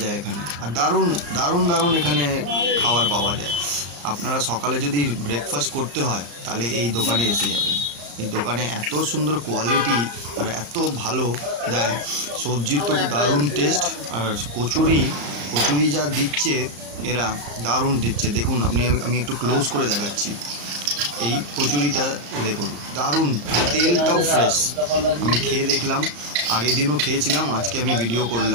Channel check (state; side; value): late; left; 35 ms